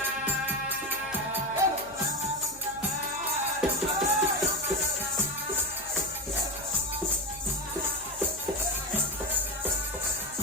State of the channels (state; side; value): noise; left; hum, 21 dB below the sound